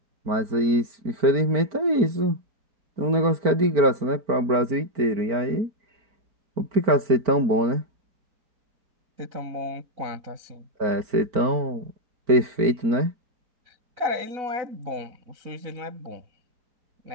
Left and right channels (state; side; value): late; left; 4.5 ms